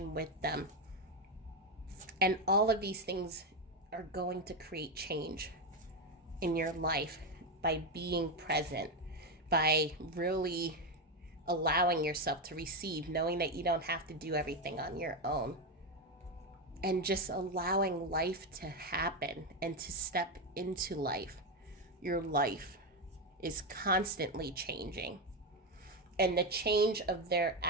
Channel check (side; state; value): both; normal; correlation 0.10